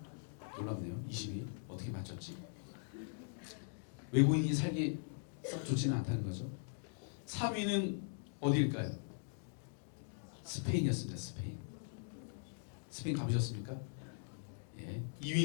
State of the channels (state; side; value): silent; right; digital silence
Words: 놀랍네요. 20위. 어떻게 맞췄지? 외국인이 살기 썩 좋지는 않다는 거죠. 3위는 어디일까요? 스페인이었습니다. 스페인. 스페인 가보셨습니까?